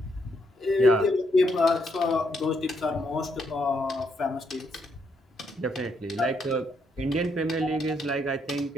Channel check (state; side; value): normal; both; correlation 0.76